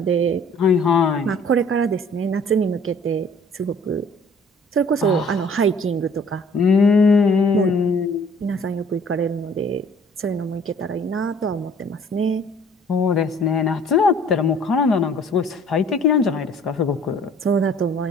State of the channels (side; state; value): both; normal; correlation 0.55